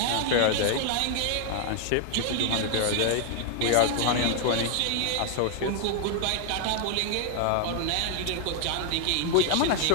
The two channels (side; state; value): both; different; correlation 0.00